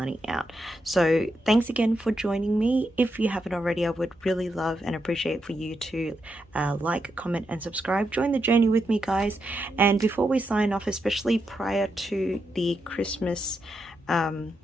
out. So thanks again for joining me. If you haven't already, I would really love and appreciate for you to like, comment, and subscribe. Join the journey with me, guys. And before we sign off, especially prior to the Christmas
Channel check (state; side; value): normal; both; correlation 0.84